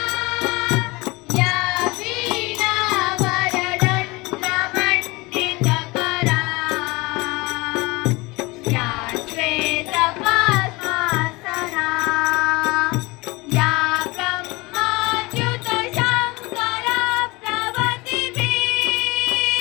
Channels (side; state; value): right; quieter; 23.7 dB